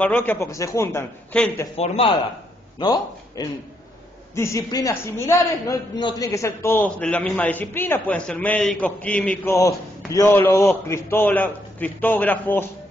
porque se juntan gente formada, ¿no? En disciplinas similares, no tienen que ser todos de la misma disciplina, pueden ser médicos, químicos, biólogos, cristógrafos.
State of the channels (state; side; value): normal; both; correlation 0.76